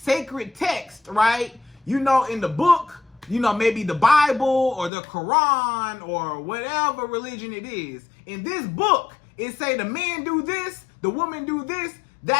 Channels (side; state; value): right; drops out; at 4.9 s